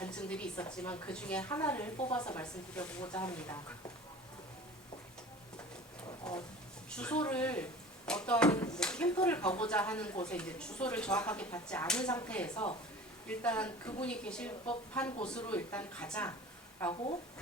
있었지만 그 중에 하나를 뽑아서 말씀드려보고자 합니다. 주소를 어떤 캠프를 가고자 하는 곳에 이제 주소를 정확하게 받지 않은 상태에서 일단 그분이 계실 법한 곳으로 일단 가자라고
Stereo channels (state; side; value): normal; both; correlation 0.40